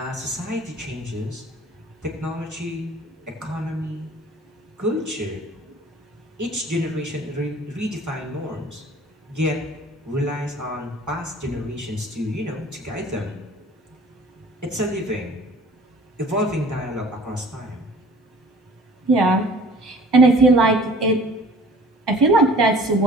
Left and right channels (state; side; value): normal; both; correlation 0.49